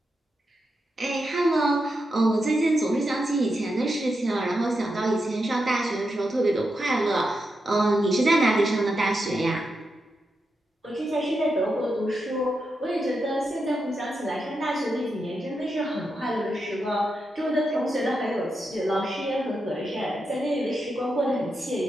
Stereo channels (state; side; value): normal; both; correlation 0.86